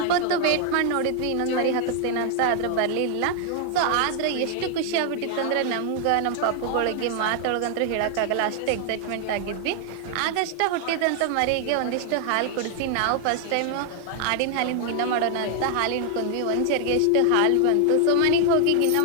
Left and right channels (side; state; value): both; different; correlation 0.00